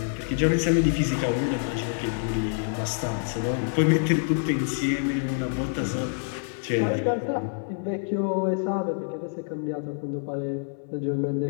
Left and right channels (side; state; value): right; silent; 60 dB below the other